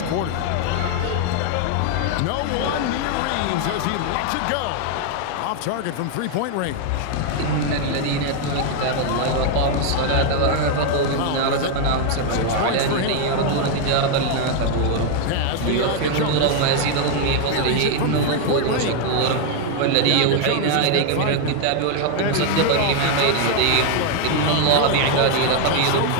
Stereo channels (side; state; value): both; different; correlation 0.00